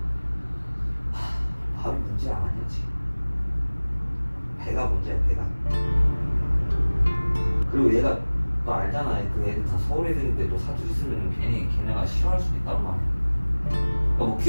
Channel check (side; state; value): both; inverted; correlation -1.00